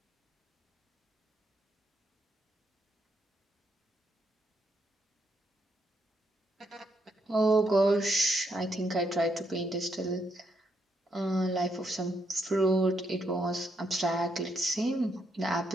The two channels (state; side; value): normal; both; correlation 0.77